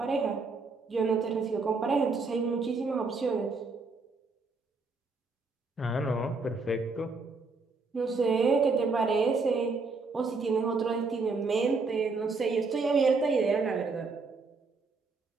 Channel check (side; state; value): left; quieter; 4.1 dB